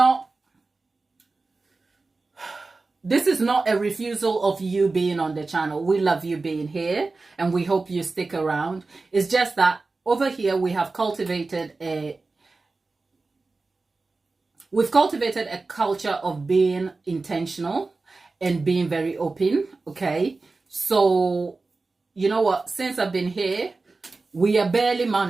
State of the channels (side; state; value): left; quieter; 3.7 dB